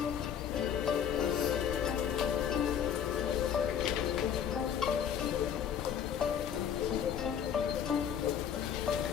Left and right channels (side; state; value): right; quieter; 8.5 dB